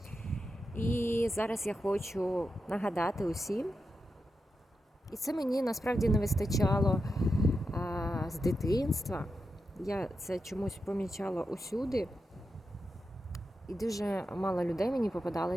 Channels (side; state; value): both; normal; correlation 0.88